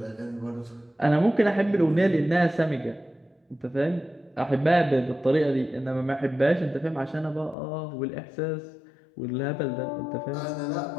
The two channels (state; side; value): drops out; right; at 7.6 s